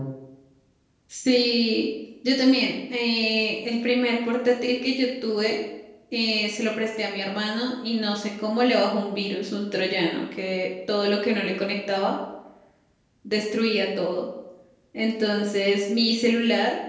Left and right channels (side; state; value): both; identical; correlation 1.00